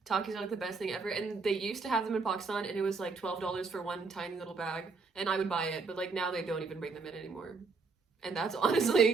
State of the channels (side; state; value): left; quieter; 4.4 dB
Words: Takis are like the best thing ever. And they used to have them in Pakistan, and it was like $12 for one tiny little bag, and I would buy it. But like now they don't even bring them in anymore, and that's